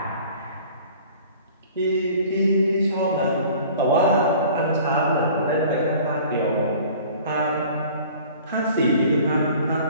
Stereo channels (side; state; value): both; inverted; correlation -0.47